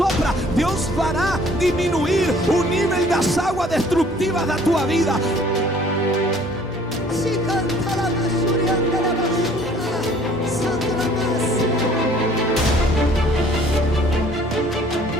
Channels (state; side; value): normal; both; correlation 0.55